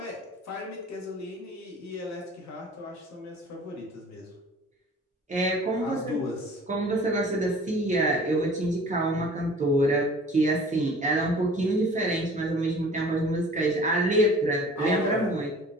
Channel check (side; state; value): both; normal; correlation 0.47